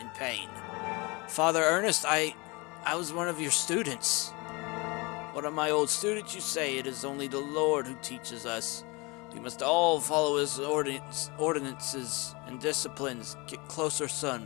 pain. Father Ernest, I was one of your students. One of my old students, you say. It is only the Lord who teaches us. We must all follow his ordinances and disciplines. Get closer, son.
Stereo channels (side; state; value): right; quieter; 26.4 dB